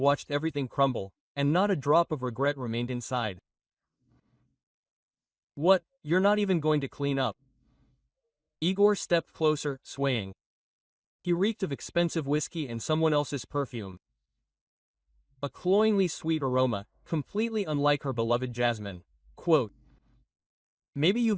everything crumble, and not a drop of regret remained inside. "What, you're not even going to clean up?" Igor stepped closer, swaying. He reeked of expensive whiskey and someone else's perfume. A cloyingly sweet aroma, completely unlike her beloved jasmine. Quote, "Maybe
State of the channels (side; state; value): both; identical; correlation 1.00